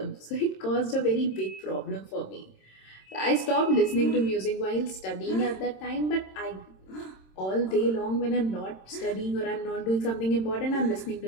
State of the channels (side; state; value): right; late; 26 ms